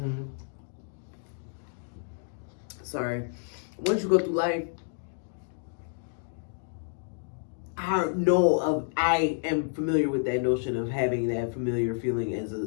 Once you go through life, I am familiar with that notion of having that familiar feeling as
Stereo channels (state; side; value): silent; right; digital silence